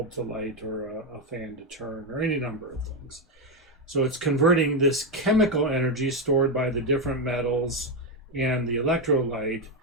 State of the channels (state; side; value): normal; both; correlation 0.06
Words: to light or a fan to turn or any number of things. So it's converting this chemical energy stored by the different metals and the electrolyte,